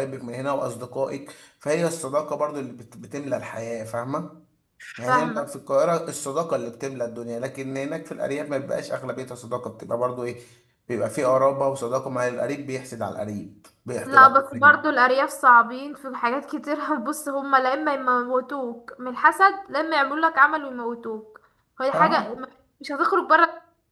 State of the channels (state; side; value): identical; both; correlation 1.00